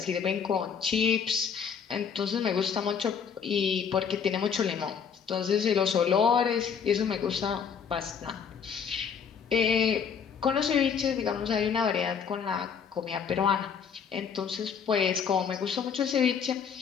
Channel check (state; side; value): quieter; right; 6.9 dB